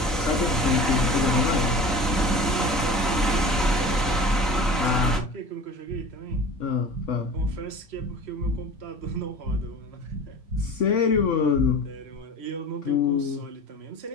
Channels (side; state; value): both; normal; correlation 0.38